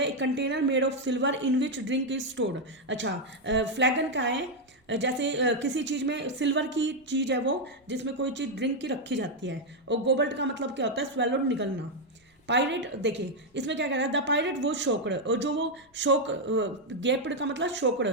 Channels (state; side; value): normal; both; correlation 0.01